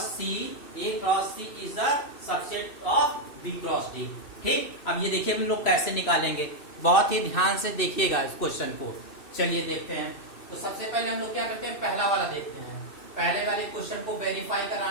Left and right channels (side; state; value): right; late; 2.6 ms